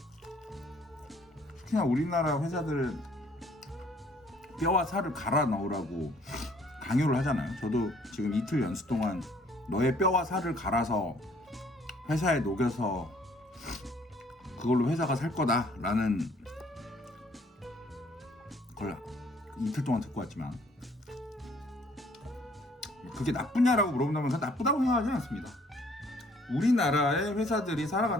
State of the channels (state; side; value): normal; both; correlation 0.60